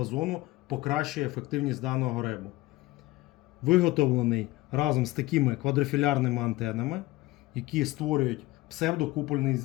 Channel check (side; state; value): right; quieter; 19.2 dB